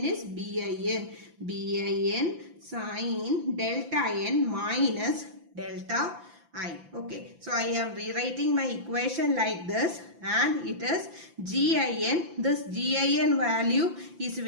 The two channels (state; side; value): late; left; 5.9 ms